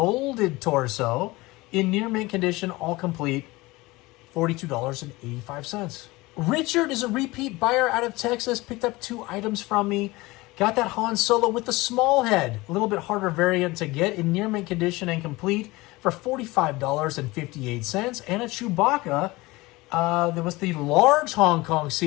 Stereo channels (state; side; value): quieter; right; 21.3 dB